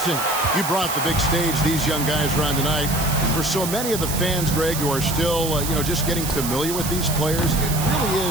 You brought the big stage these young guys are on tonight. For so many of the fans, Greg, who are still, just getting familiar with these players, it really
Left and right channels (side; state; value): right; noise; hiss, 5 dB below the sound